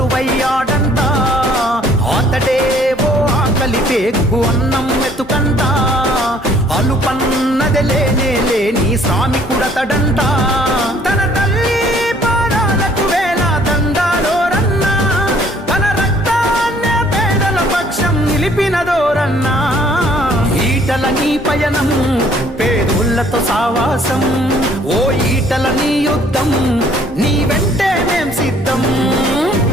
అతడే ఓ ఆకలి పేగు అన్నం మెతుకంట, అలుపన్నది లేనే లేని శ్రామికుడతడంట. తన తల్లి పాదాలకు వేల దండాలోరన్నా, తన రక్తాన్నే పేదల పక్షం నిలిపినదోరన్నా. ఈటల నీ పయనం పేదోళ్లతో సావాసం, ఓ ఈటల నీ యుద్ధం నీ వెంటే మేం సిద్ధం.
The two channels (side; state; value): both; normal; correlation 0.60